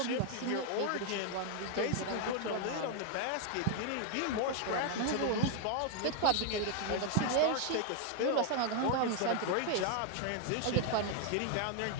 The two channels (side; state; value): both; different; correlation 0.00